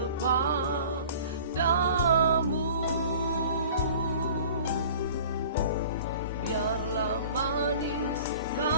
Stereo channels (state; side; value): inverted; both; correlation -0.44